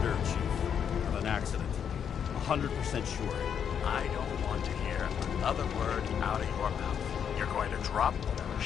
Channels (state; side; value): quieter; right; 8.0 dB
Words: Chief. Of an accident. 100% sure. I don't want to hear another word out of your mouth. You're going to drop whatever